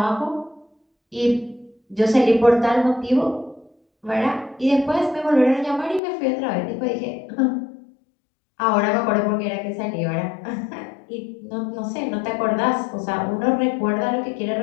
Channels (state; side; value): drops out; right; at 6.0 s